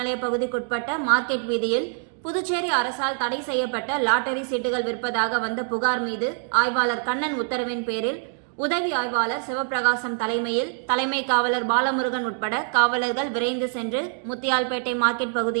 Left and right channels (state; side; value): silent; left; 62 dB below the other